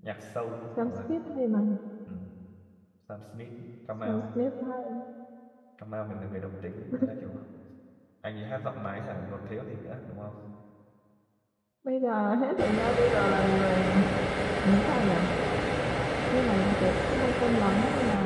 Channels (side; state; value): both; identical; correlation 1.00